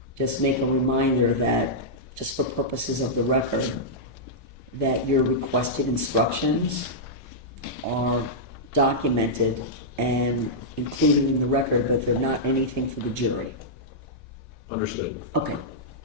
just make a reminder that, just for purposes of the record, that your requested instructions are documented and included in the record, but they're not anything for the jury. Understood. Okay.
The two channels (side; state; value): both; normal; correlation -0.10